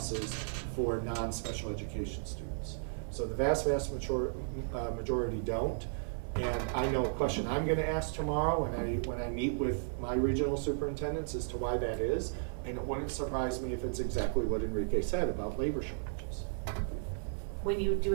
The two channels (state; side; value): silent; left; 55 dB below the other